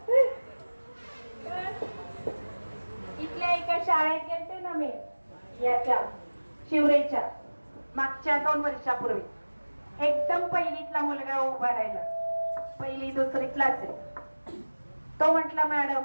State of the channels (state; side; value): inverted; both; correlation -1.00